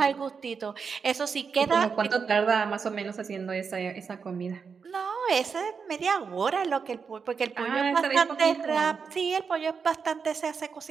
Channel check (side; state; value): left; quieter; 5.8 dB